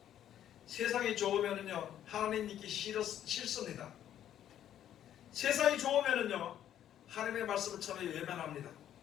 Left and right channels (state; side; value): quieter; right; 10.9 dB